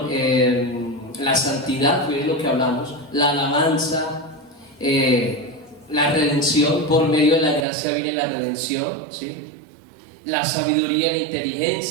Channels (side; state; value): left; drops out; at 7.7 s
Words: la santidad, fue lo que hablamos, la alabanza, la redención. Por medio de la gracia viene la redención, ¿sí? La sabiduría, la